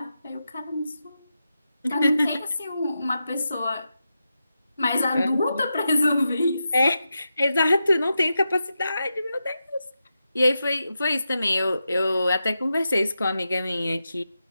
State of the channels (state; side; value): inverted; both; correlation -0.89